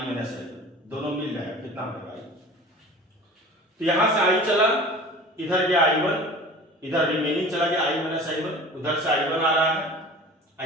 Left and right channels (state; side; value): normal; both; correlation 0.40